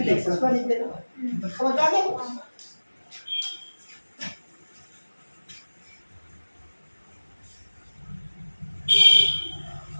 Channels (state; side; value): inverted; both; correlation -1.00